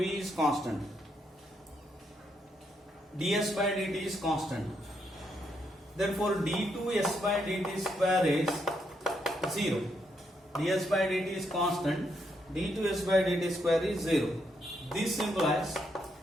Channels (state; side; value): normal; both; correlation 0.77